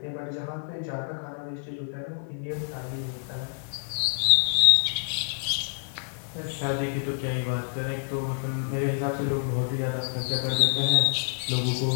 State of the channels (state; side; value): silent; right; digital silence